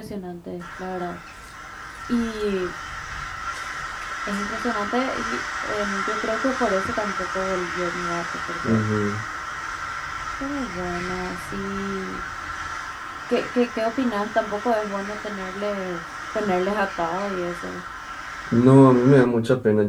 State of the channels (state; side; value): identical; both; correlation 1.00